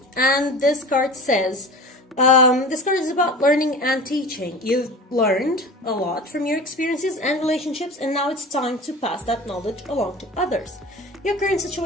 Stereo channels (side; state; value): both; normal; correlation 0.35